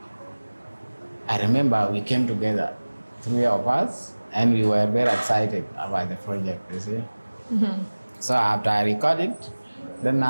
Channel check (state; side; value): inverted; both; correlation -1.00